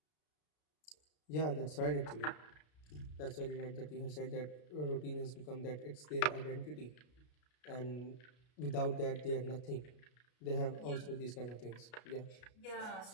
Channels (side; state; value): right; late; 33 ms